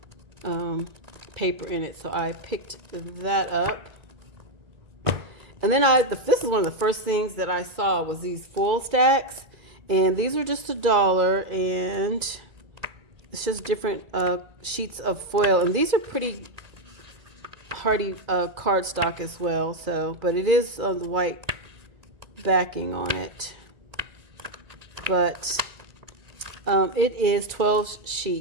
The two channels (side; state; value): left; late; 2.3 ms